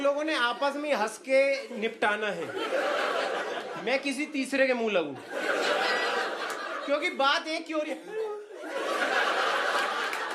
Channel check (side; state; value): both; identical; correlation 1.00